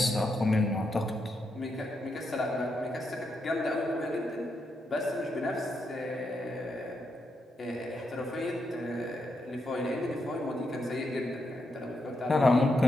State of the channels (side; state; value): both; normal; correlation 0.82